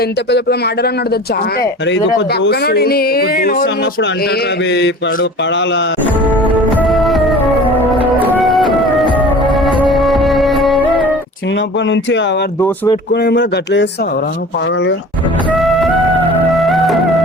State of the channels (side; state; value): both; normal; correlation 0.41